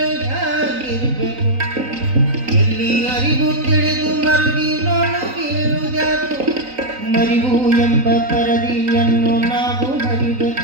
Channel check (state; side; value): late; left; 3.9 ms